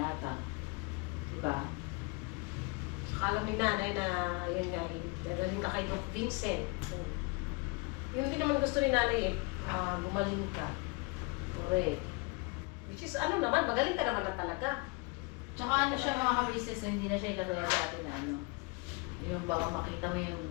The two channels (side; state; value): right; quieter; 29.1 dB